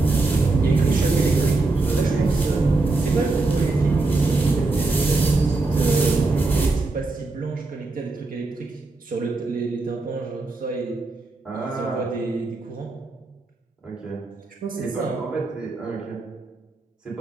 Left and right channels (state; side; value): quieter; left; 3.3 dB